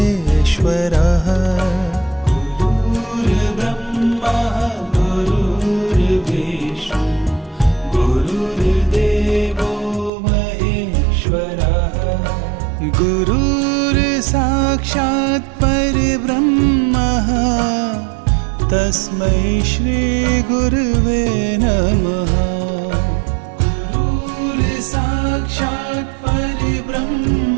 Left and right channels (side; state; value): left; drops out; at 10.1 s